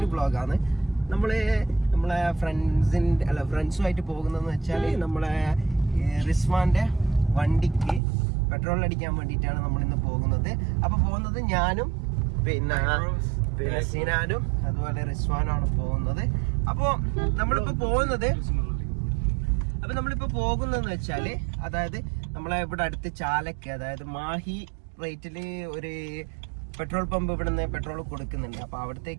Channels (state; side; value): drops out; left; at 8.0 s